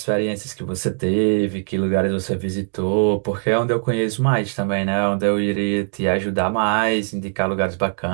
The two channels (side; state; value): left; silent; digital silence